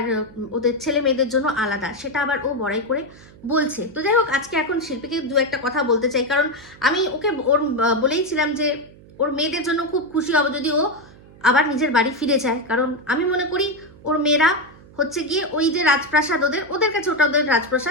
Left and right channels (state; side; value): noise; right; hum, 23 dB below the sound